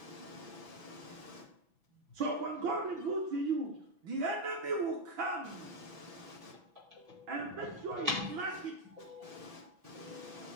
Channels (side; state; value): left; late; 6.0 ms